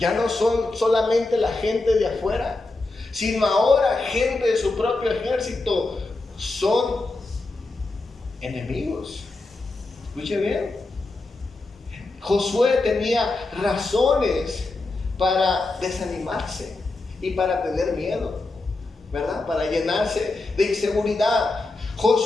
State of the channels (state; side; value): quieter; right; 3.2 dB